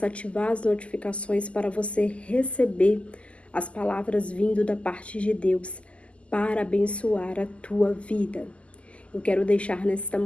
ativar as notificações para você receber as palavras vindo da parte de Deus para abençoar a tua vida. Eu quero deixar nesta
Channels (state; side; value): late; right; 0.058 ms